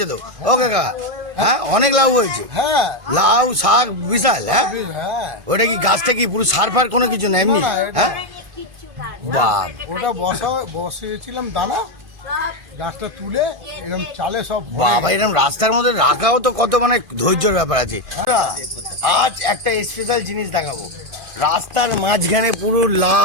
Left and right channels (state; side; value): late; left; 2.5 ms